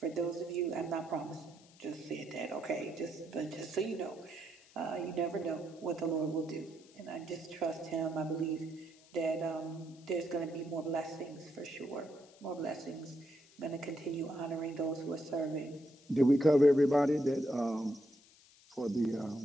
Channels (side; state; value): left; noise; hiss, 26 dB below the sound